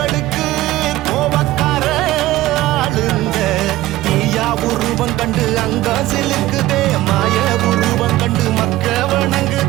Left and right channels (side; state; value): left; quieter; 16.4 dB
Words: கோவக்கார ஆளுங்க தீயா உருவம் கண்டு அங்க சிலுக்குதே மாய உருவம் கண்டு மக்க